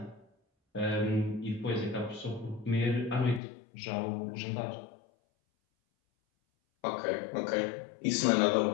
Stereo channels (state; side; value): drops out; right; at 3.4 s